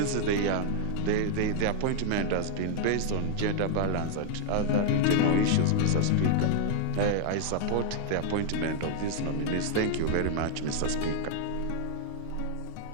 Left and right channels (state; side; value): different; both; correlation 0.00